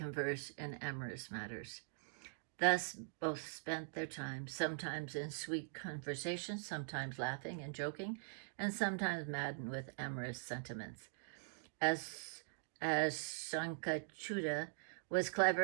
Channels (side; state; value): left; silent; digital silence